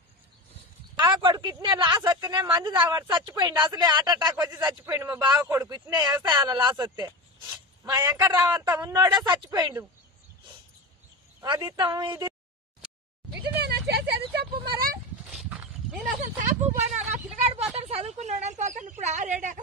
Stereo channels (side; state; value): both; normal; correlation 0.24